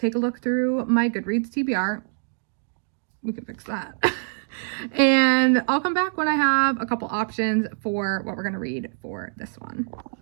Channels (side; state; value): left; silent; digital silence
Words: a look through my Goodreads TBR. We can fix that. And I'll come back when I have a couple options for what we're going to read for this one.